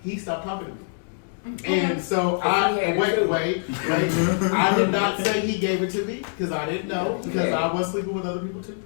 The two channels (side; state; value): right; silent; digital silence